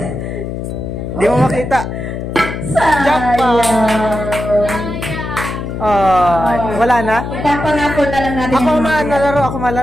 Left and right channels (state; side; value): noise; left; hum, 6 dB below the sound